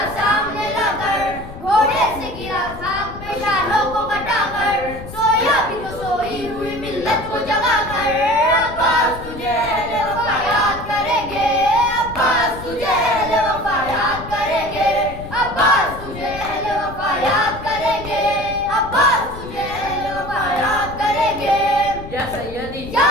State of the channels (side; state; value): left; noise; rumble, 13 dB below the sound